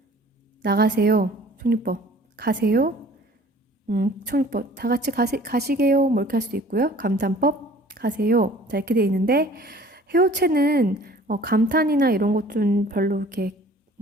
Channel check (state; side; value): normal; both; correlation 0.50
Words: 나가세요. 총리법. 가세요. 총리법. 다 같이 가시게요. 뭐 이렇게 할 수도 있고요. 감탄법. 가세요. 자, 이렇게 돼 있는데, 해요체는 감탄이나 이런 것 좀 별로 이렇게,